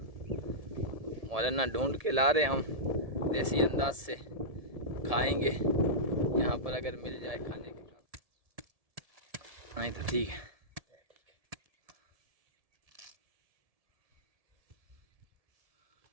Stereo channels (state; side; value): late; left; 1.7 ms